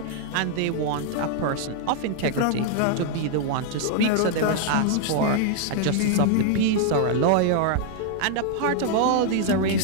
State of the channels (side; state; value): both; different; correlation 0.00